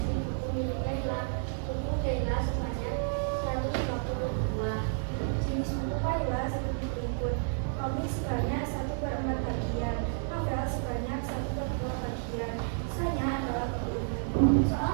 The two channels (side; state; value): left; silent; 57 dB below the other